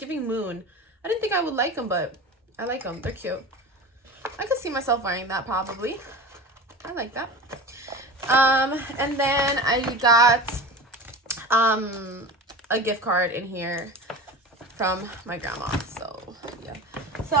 moon. I didn't think I would like them, but I like them. They're cute. I could see myself wearing that probably. I like that. And then I got a gift card in here from my grandma. So yeah, so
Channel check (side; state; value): both; normal; correlation 0.32